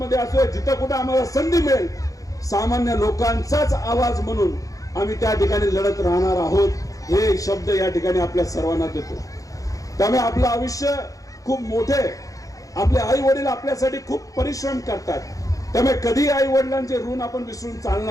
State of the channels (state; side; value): late; right; 0.17 ms